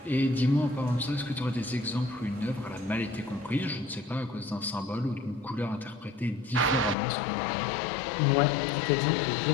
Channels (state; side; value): drops out; right; at 7.0 s